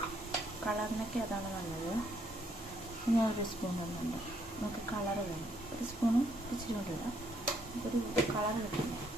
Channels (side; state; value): both; normal; correlation 0.70